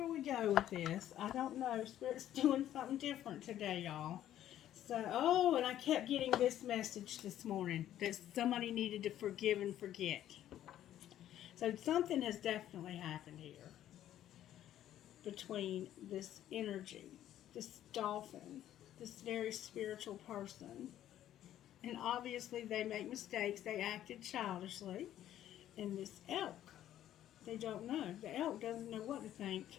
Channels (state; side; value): quieter; right; 11.9 dB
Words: we go with this. I don't know. Spirit's doing something different today, y'all. So, oh, and I kept getting this message this morning that somebody needed to forgive and forget. So something has definitely happened here between this energy, this dolphin, this very spiritual person. And obviously they make mistakes. They acted childishly. And this elk, they don't know. The elk doesn't know what to think.